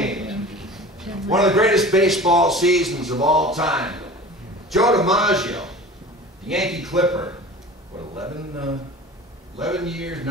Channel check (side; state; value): both; normal; correlation 0.39